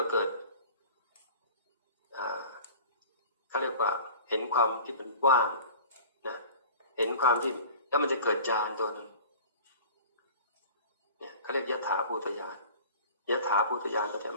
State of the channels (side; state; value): both; inverted; correlation -0.41